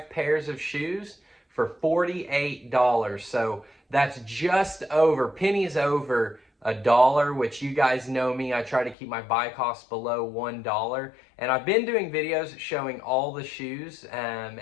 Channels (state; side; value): drops out; right; at 9.0 s